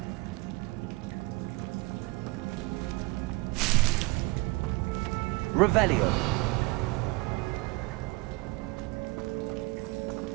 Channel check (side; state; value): left; quieter; 23.8 dB